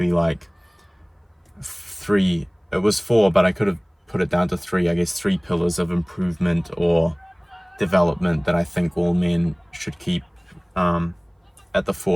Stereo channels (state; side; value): identical; both; correlation 1.00